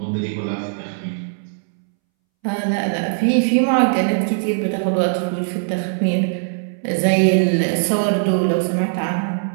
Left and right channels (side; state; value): left; silent; 65 dB below the other